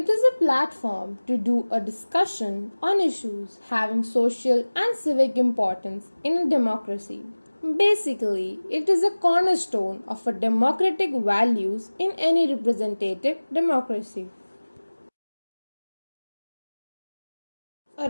is a platform to do a discussion on issues having social and civic importance in a democracy. Basically, it is a cornerstone of a democratic values in any representative democracy.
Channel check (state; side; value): inverted; both; correlation -1.00